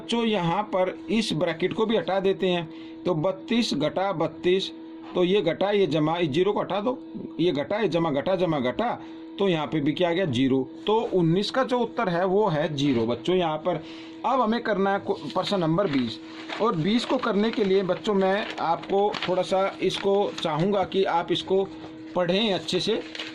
यहाँ पर इस ब्रैकेट को भी हटा देते हैं। तो 32 घटा 32, तो ये घटा ये जमा, इस 0 को हटा दो, ये घटा ये जमा घटा, तो यहाँ पे भी क्या आ गया 0। तो 19 का जो उत्तर है वो है 0 बच्चों यहाँ पर। अब हमें करना है प्रश्न नंबर 20, और 20 को करने के लिए बच्चों मैं आपको थोड़ा सा इसको चाहूँगा कि आप इसको पढ़ें अच्छे से,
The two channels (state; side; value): identical; both; correlation 1.00